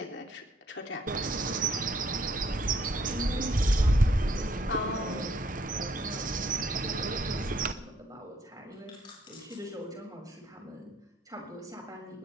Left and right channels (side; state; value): both; normal; correlation 0.68